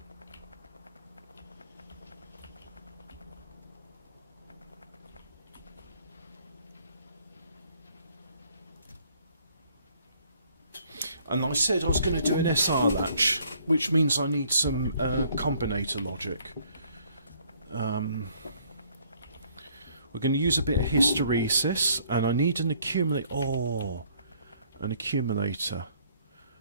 And I said I was going to do an SR latch, which means I need some combinator logic. We're going to use a bit of hysteresis, and I need an accumulator. Oh, an accumulator.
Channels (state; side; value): inverted; both; correlation -0.63